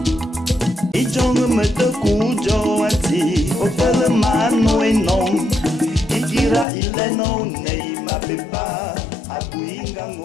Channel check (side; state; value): right; drops out; at 6.7 s